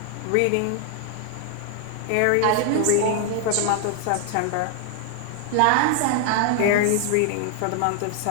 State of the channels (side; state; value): both; different; correlation 0.00